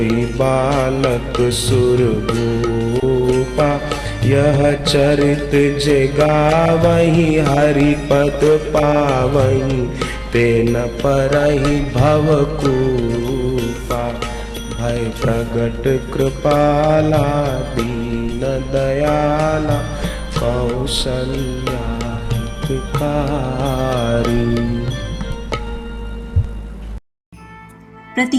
बालक सुरभूपा। यह चरित जे गावहि हरि पद पावहि, तेन परहि भवकूपा। भय प्रगट कृपाला दीन दयाला, कौसल्या हितकारी।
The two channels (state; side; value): identical; both; correlation 1.00